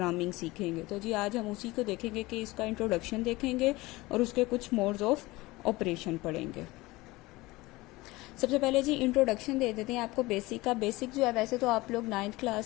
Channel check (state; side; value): quieter; right; 20.7 dB